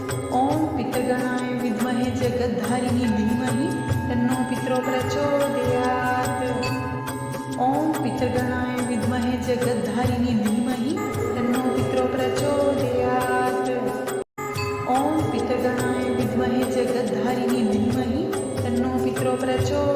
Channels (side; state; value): both; identical; correlation 1.00